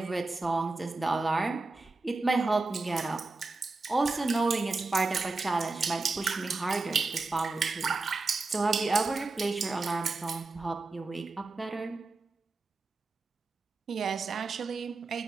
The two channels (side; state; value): left; quieter; 3.5 dB